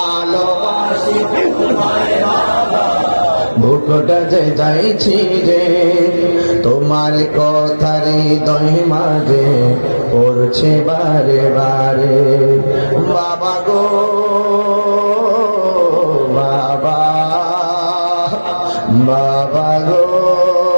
বুকটা যে যাইছি রে, তোমার কথার হৃদয় মাঝে পড়ছে বারে বারে। বাবা গো বাবা, বাবা গো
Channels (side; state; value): both; inverted; correlation -1.00